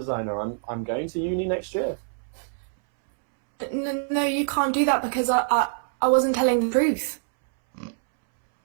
I'm going to uni next year. No, you can't do that because I wasn't telling the truth.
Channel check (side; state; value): left; silent; 62 dB below the other